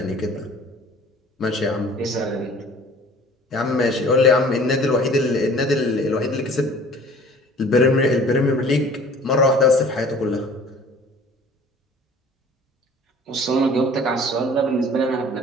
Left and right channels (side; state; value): both; normal; correlation 0.48